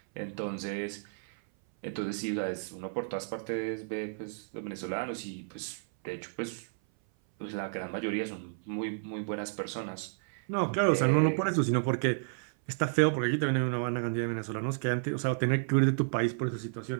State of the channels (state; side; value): silent; left; 57 dB below the other